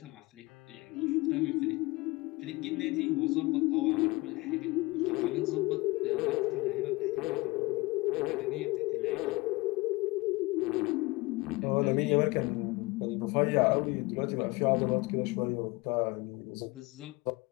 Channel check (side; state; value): right; quieter; 23.1 dB